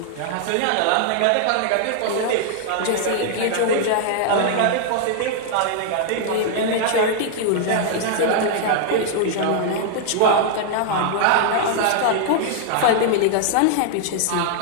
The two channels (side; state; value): both; different; correlation -0.01